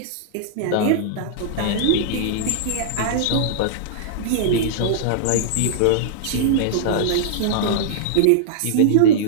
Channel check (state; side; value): different; both; correlation -0.02